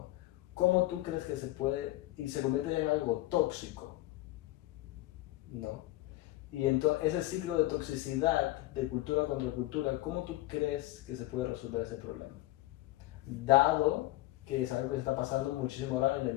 ¿Cómo tú crees que se puede, y se convierte ya en algo tóxico, ¿no? Y entonces ese ciclo de toxicidad, de cultura contra cultura, ¿cómo tú crees que se puede resolver ese problema? Dado que es algo que se está pasando muchísimo ahora en la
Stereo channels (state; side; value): quieter; right; 17.3 dB